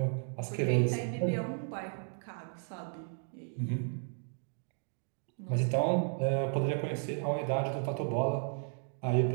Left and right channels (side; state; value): left; silent; 55 dB below the other